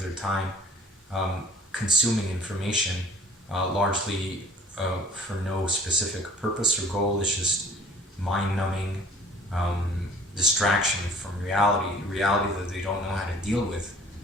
their time consuming information, largely for no specific purpose or goal. It's just mind-numbing distraction from reality that they don't know how to deal with.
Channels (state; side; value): normal; both; correlation 0.51